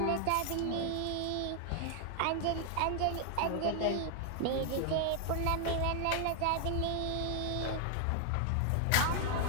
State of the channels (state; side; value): different; both; correlation 0.00